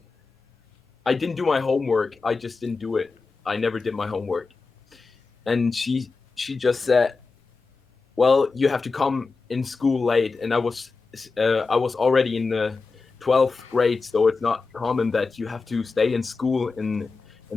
didn't do my homework. I just didn't do it. I never did my homework. And she just said, well, you have to come in school late. And I was already in the 12th grade, so it's not common that you have to stay in school in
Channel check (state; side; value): quieter; right; 4.3 dB